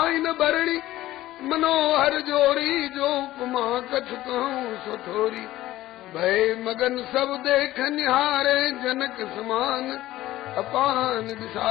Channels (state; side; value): quieter; right; 15.6 dB